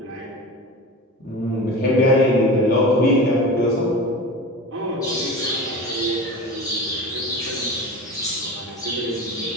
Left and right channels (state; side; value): normal; both; correlation 0.31